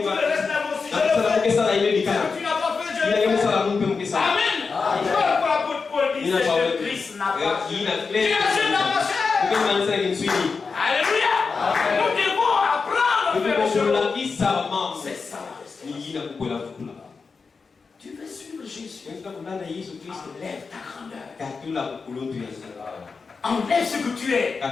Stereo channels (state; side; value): quieter; right; 4.8 dB